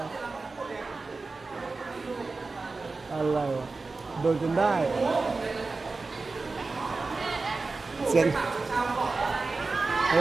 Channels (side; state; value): left; quieter; 3.8 dB